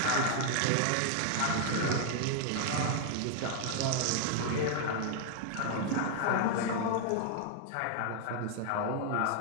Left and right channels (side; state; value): both; different; correlation 0.00